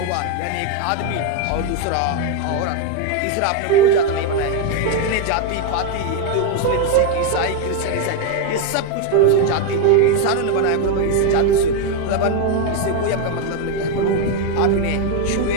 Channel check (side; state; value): both; different; correlation 0.01